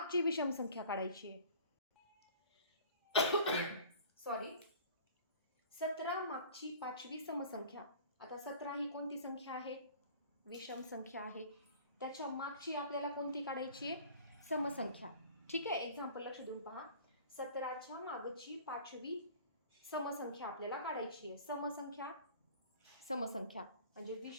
विषम संख्या काढायची आहे. सॉरी, 17 मागची 5वी समसंख्या. आता 17 ही कोणती संख्या आहे? विषम संख्या आहे. त्याच्या मागची आपल्याला कोणती काढायची आहे? समसंख्या. ठीक आहे, एक्झाम्पल लक्ष देऊन पहा. 17च्या मागची 5वी समसंख्या आपल्याला काढायची आहे. समसंख्या म्हणजे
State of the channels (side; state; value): both; inverted; correlation -0.45